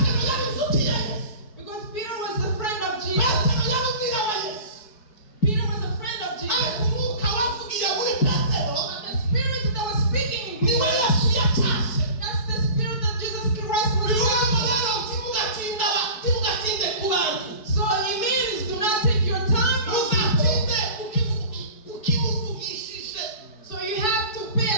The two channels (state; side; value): late; right; 4.6 ms